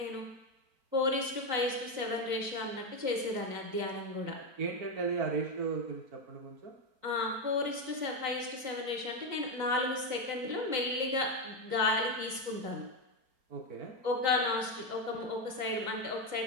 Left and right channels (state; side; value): late; left; 3.9 ms